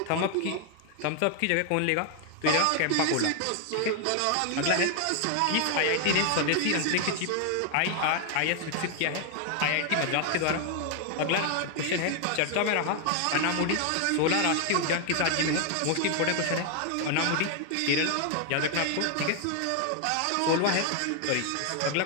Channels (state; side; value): different; both; correlation 0.00